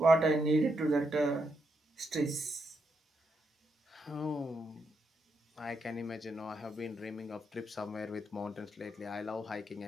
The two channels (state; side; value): normal; both; correlation 0.81